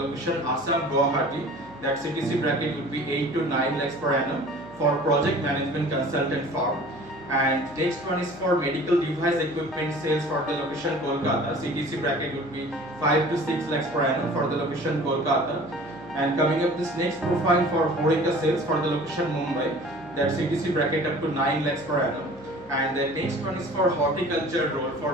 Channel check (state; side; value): noise; left; hum, 25 dB below the sound